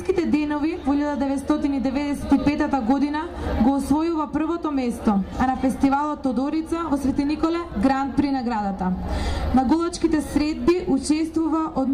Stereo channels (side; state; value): both; identical; correlation 1.00